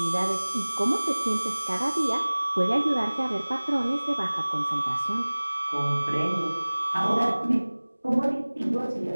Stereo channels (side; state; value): both; inverted; correlation -1.00